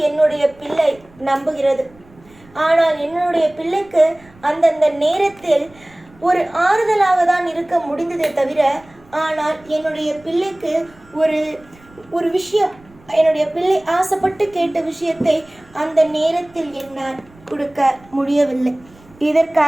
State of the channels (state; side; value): noise; right; rumble, 27 dB below the sound